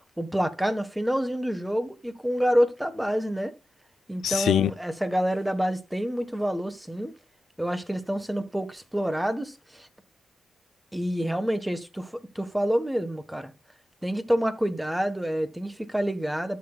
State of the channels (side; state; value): both; normal; correlation 0.93